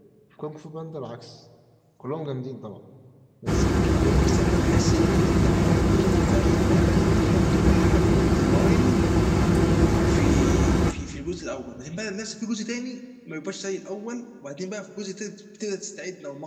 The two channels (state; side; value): identical; both; correlation 1.00